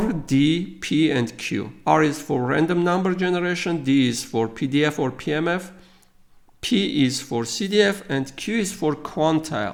D, P, and Q. R is for random number generation, D is for PDF or PMF, P is for CDF, and Q is for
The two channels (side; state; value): both; identical; correlation 1.00